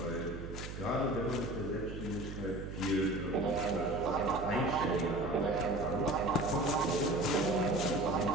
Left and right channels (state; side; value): noise; right; hum, 9 dB below the sound